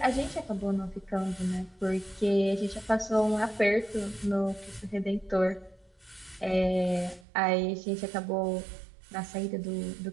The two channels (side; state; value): left; drops out; at 7.2 s